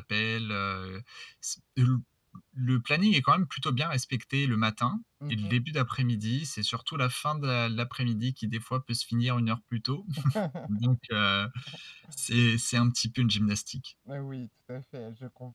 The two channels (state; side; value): identical; both; correlation 1.00